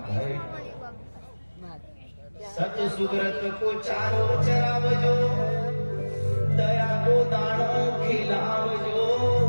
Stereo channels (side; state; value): both; inverted; correlation -1.00